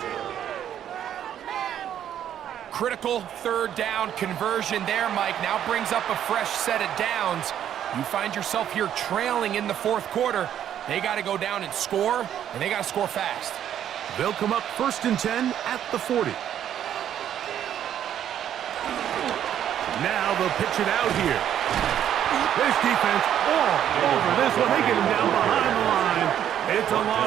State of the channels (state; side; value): quieter; left; 10.3 dB